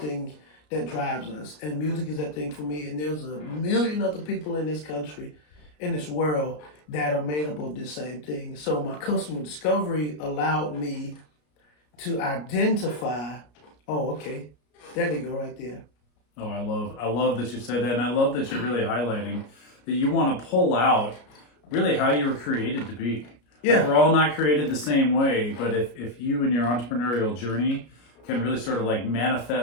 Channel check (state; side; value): late; right; 33 ms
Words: that drives us. And music is that thing for me. And there's a million other people in this country, in this world, that are made up of this same thing. So my customer discovery allowed me to identify, oh, okay, there they go right there. Oh, I love that you said that, and I love that you're really highlighting that you want to pull out really how you were created to be. Yeah. Like, we're all not created the same way, but if you in your entrepreneurial journey can really sort of like